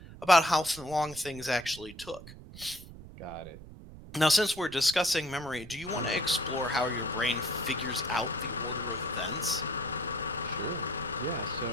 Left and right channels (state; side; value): noise; right; rumble, 16 dB below the sound